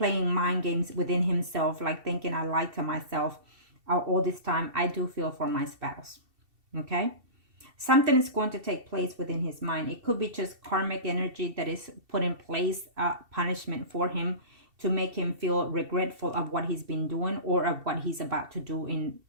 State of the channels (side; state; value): left; late; 2.7 ms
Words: mind games within himself, like thinking I lied to myself all this time. I do feel for my spouse. Okay? Something is going to take place within his mind. It could be just karmic energy that is put in place, punishment for him to make him feel regretful of what he's been doing or of what he's about to do